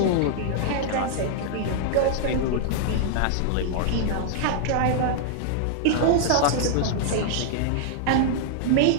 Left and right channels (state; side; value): different; both; correlation -0.01